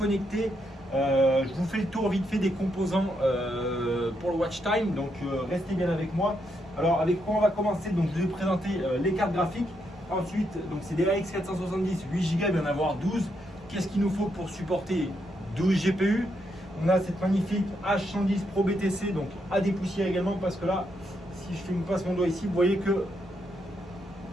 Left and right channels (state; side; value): normal; both; correlation 0.79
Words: Je vous fais le tour vite fait des composants pour le watch time. Donc restez bien avec moi. Alors avec quoi on va commencer? Donc je vais vous présenter les cartes graphiques. Ensuite, donc c'est des RX 470 8 Go, il va y en avoir 12. Qu'est-ce qu'il nous faut pour supporter 12 GPU? On a cette magnifique H110 Pro BTC, donc à dépoussiérer également, parce que là, si je passe mon doigt ici, vous voyez que